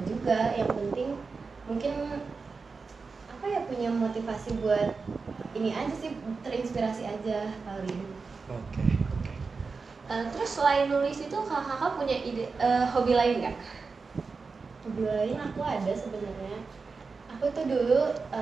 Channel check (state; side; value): quieter; left; 4.6 dB